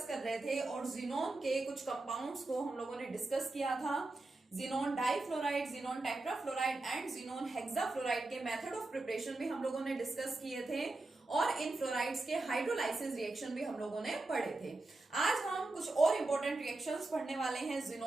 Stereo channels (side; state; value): left; quieter; 3.0 dB